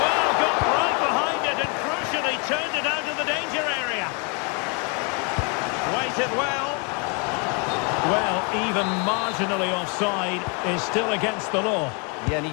Well, even marginally offside is still against the law. Yeah, and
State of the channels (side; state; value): right; quieter; 34.5 dB